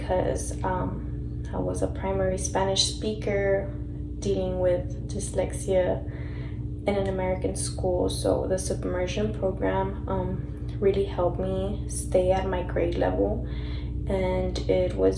I was a primary Spanish speaker dealing with dyslexia in an American school. So the submersion program really helped me stay at my grade level, and it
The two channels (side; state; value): both; identical; correlation 1.00